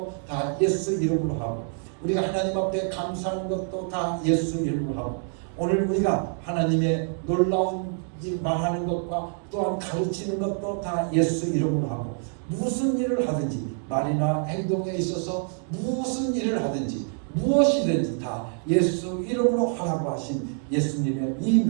다 예수 이름으로 하고 우리가 하나님 앞에 감사하는 것도 다 예수 이름으로 하고 오늘 우리가 하나님의 놀라운 일 말하는 것과 또한 가르치는 것도 다 예수 이름으로 하고 무슨 일을 하든지 말이나 행동에 있어서 무슨 일을 하든지 무엇이든지 다 예수 이름으로 하라고 하신 예수님의 이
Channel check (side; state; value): left; silent; 57 dB below the other